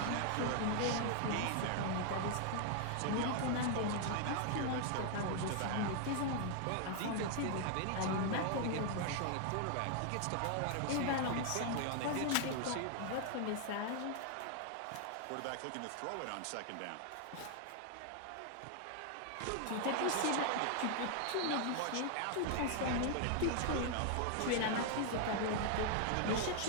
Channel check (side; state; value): both; different; correlation 0.00